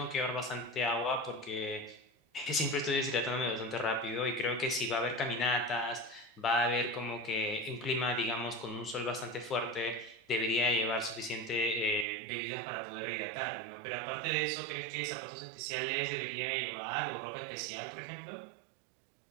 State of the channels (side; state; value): left; drops out; at 12.1 s